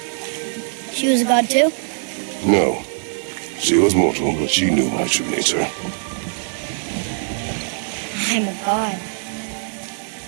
She was a god too? No. She was mortal, but she knew my true nature. I'm a god.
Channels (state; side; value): silent; left; 65 dB below the other